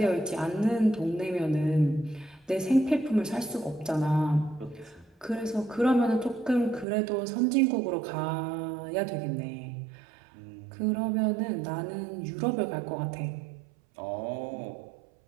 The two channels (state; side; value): drops out; left; at 6.9 s